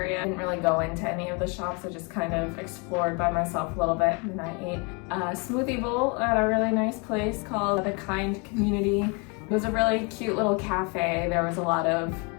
I didn't really go into any of the shops. I just kind of explored by myself a little bit, and I ate a smoothie bowl at a really nice place called the Kynd Community. It was a really cute little cafe. There was a lot of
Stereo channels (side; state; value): right; quieter; 32.3 dB